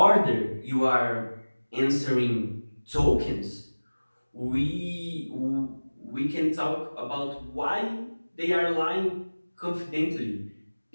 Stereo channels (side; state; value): both; inverted; correlation -1.00